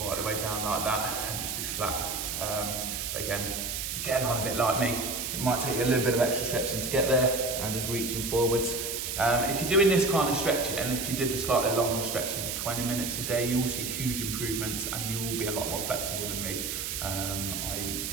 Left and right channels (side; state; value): right; noise; hiss, 3 dB below the sound